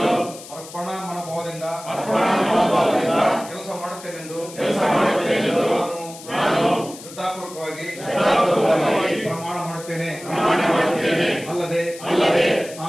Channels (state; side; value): noise; left; hiss, 16 dB below the sound